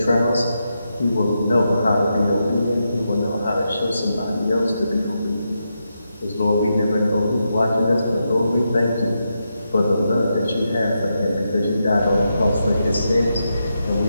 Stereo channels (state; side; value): inverted; both; correlation -0.85